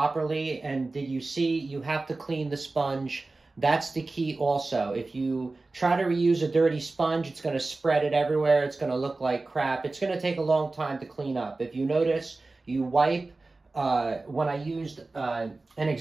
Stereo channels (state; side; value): quieter; left; 3.4 dB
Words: And did you see, you have to clean the sponge. That's the key also. If you try to reuse a dirty sponge, it's going to spread it everywhere. It's going to look like crap. It's going to take a long time to clean up. If you notice, you wipe. When I used, an